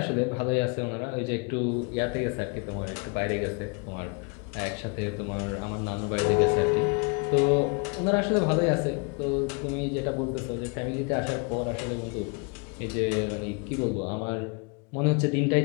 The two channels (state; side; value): quieter; right; 34.2 dB